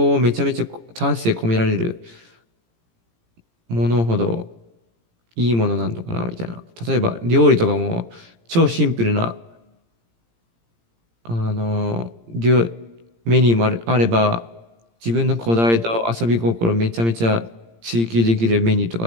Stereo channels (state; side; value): late; left; 17 ms